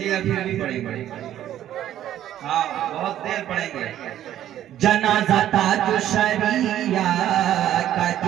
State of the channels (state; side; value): quieter; left; 11.9 dB